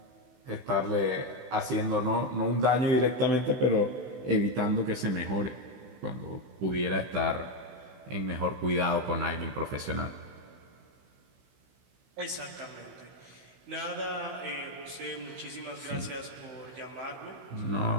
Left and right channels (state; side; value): late; left; 16 ms